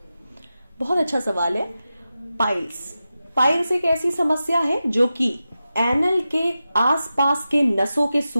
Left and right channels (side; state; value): both; inverted; correlation -0.92